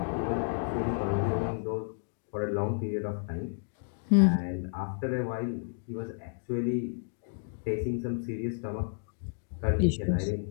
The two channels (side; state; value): right; silent; digital silence